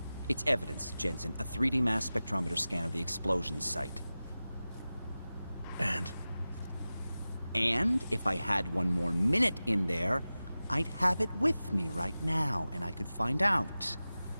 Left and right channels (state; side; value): inverted; both; correlation -0.96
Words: It's evidence, Jensen. A 3D mass spectrometer scan of the explosion site. And? And if I had one more minute in there, I'd have it with me right now, and I could find out.